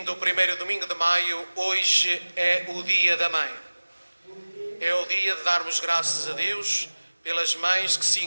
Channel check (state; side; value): inverted; both; correlation -1.00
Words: o 1º domingo de maio, hoje é o Dia da Mãe. É o dia de darmos graças a Deus pelas mães que se